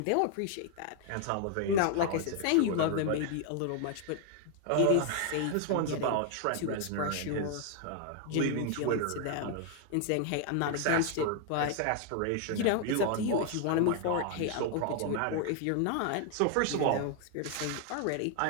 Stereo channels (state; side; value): different; both; correlation 0.00